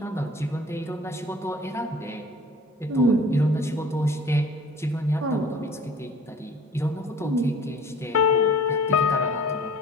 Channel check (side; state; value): both; normal; correlation 0.47